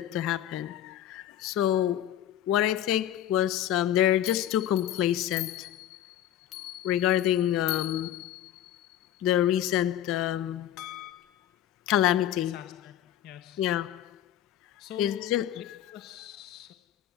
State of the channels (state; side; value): quieter; right; 11.6 dB